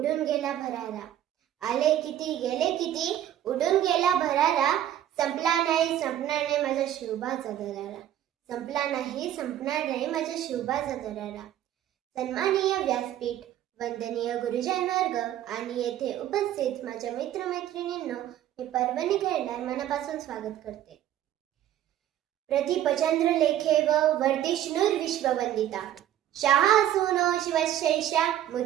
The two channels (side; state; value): left; quieter; 11.8 dB